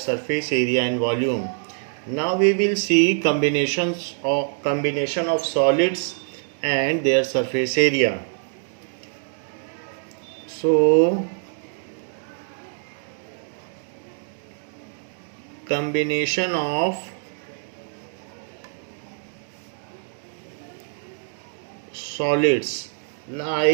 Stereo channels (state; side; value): silent; left; digital silence